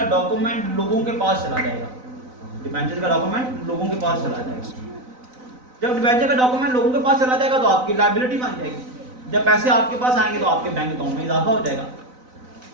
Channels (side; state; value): left; late; 4.0 ms